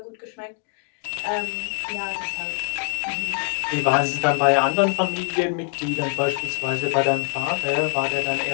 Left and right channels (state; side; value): quieter; right; 39.2 dB